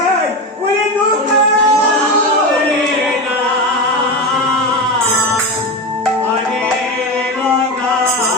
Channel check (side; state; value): both; normal; correlation 0.20